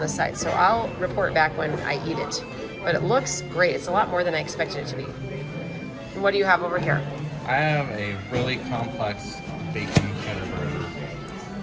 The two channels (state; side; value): identical; both; correlation 1.00